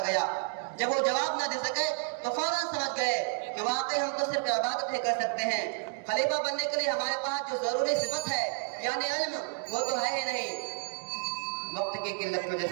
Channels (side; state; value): left; silent; 57 dB below the other